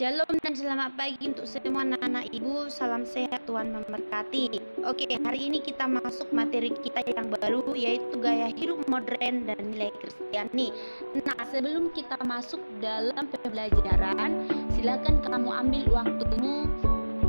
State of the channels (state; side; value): inverted; both; correlation -1.00